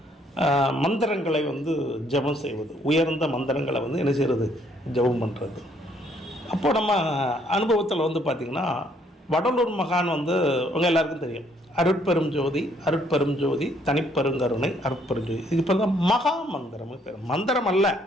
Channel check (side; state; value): both; normal; correlation 0.67